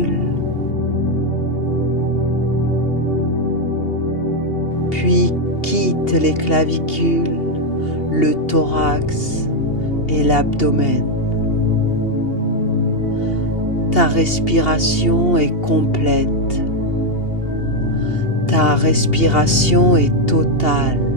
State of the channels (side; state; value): right; late; 2.8 ms